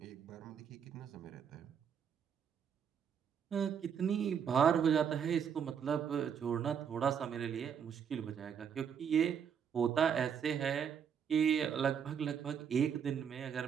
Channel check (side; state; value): left; quieter; 7.7 dB